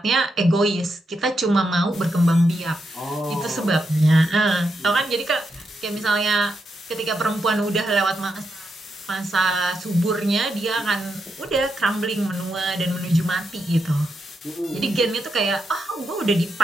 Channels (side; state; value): both; normal; correlation 0.84